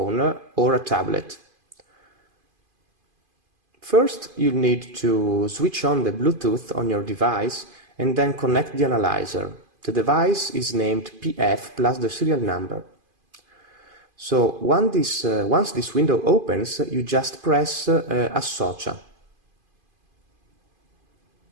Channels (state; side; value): late; left; 2.5 ms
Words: or a tablet. First, you'll need to switch on the Bluetooth on your device and then connect the analyzer. The device is named PF plus the serial number. So once this window opens, you just press Associa.